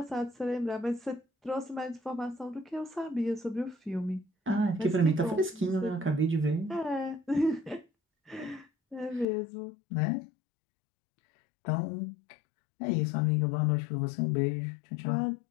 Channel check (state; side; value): drops out; right; at 9.2 s